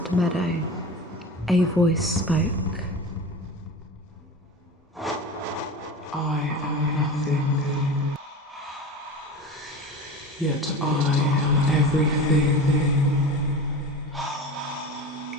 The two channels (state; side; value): normal; both; correlation 0.31